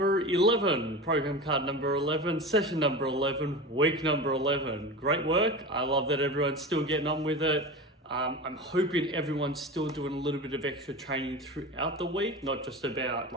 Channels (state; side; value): normal; both; correlation 0.29